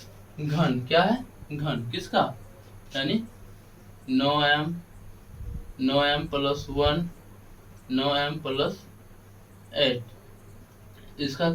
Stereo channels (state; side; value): identical; both; correlation 1.00